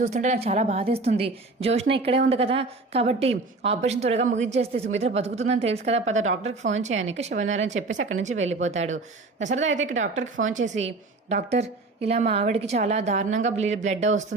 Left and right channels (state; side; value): quieter; left; 3.5 dB